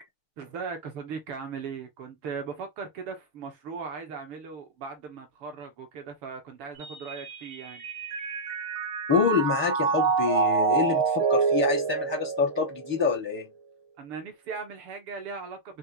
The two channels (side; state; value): left; late; 6.7 ms